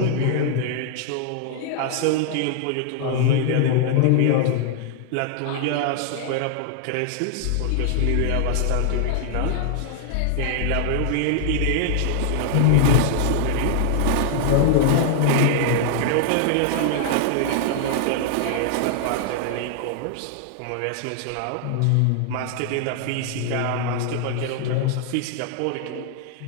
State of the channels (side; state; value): both; different; correlation 0.00